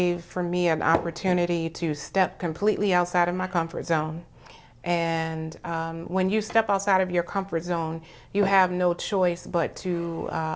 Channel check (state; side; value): identical; both; correlation 1.00